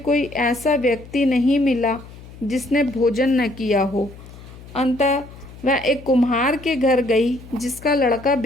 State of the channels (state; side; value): noise; left; hum, 18 dB below the sound